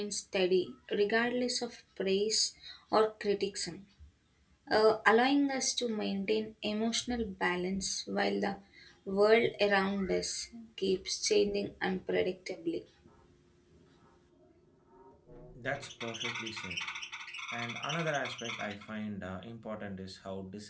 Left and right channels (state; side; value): identical; both; correlation 1.00